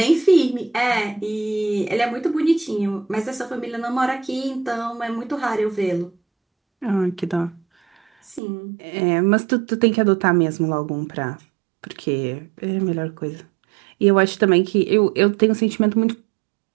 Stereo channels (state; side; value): drops out; left; at 8.4 s